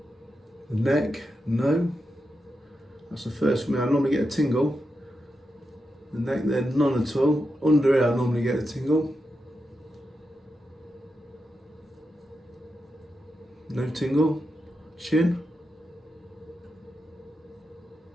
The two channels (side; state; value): both; normal; correlation 0.87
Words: The neck, no. That's the first for me. I normally get a tingle. The neck there, none at all. Under here, I normally get a tingle. No tingle. Chin.